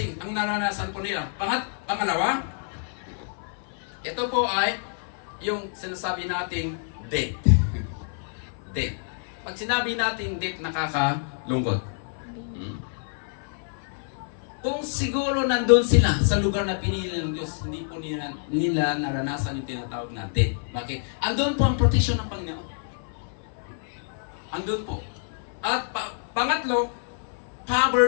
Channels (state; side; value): silent; right; 60 dB below the other